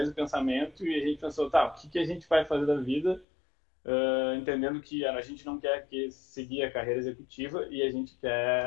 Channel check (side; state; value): right; drops out; at 3.2 s